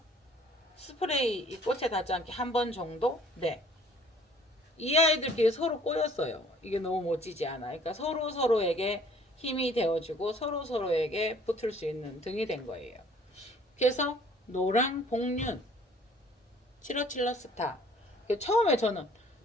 스프레이 이 꽃에 닿지 않게 한 번 정도? 네. 이 아이들끼리 서로 꼬였어요. 이게 너무 멋지지 않아. 그러니까 서로 서로에게 힘이 되어주고 서로 서로에게 붙을 수 있는 등이 된 거예요. 그래서 노랑 복륜 치러칠러스타. 처음에 저는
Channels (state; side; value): normal; both; correlation 0.56